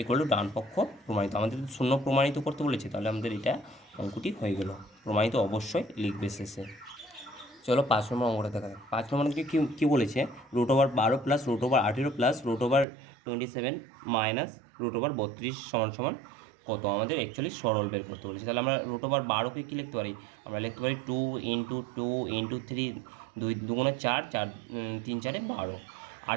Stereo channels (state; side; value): drops out; left; at 12.9 s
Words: ইকুয়াল টু ডান পক্ষ প্রমাণিত। আমাদের 0 প্রমাণিত করতে বলেছে, তাহলে আমাদের এটা অঙ্কটি হয়ে গেল। প্রমাণিত অবশ্যই লিখবে শেষে। চলো 5 নম্বর অঙ্কটা দেখা যাক। 5 নম্বর অঙ্কে কী বলেছে, √12 প্লাস √18 প্লাস √27 মাইনাস √32 সমান সমান কত? আমাদের অ্যাকচুয়ালি সরল বের করতে বলেছে। তাহলে আমরা √12কে কী লিখতে পারি? আমরা লিখতে পারি 2 × 2 × 3, 2 2 4, 4 3 4 12।